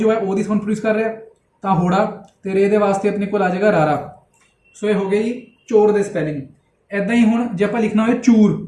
है ओ दी साउंड प्रोड्यूस कर रहा है, तो होड़ा ते रे दे वास्ते अपने को आ जाएगा रारा। सो ये हो गई चोर दे स्पैलिंग। ऐदा ही हुण जे आपां लिखना होए चूर,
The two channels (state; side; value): identical; both; correlation 1.00